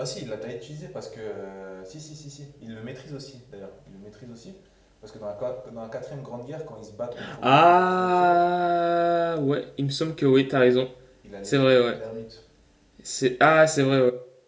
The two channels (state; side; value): identical; both; correlation 1.00